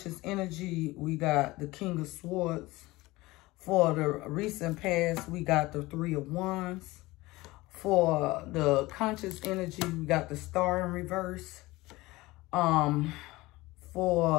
energy, we got the King of Swords. For the recent past, we got the 3 of Wands. For the conscious energy, we got the Star in reverse.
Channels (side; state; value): right; quieter; 20.2 dB